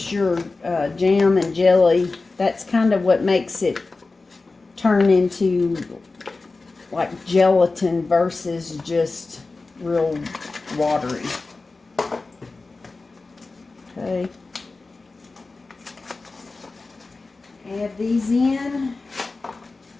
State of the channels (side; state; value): right; quieter; 3.6 dB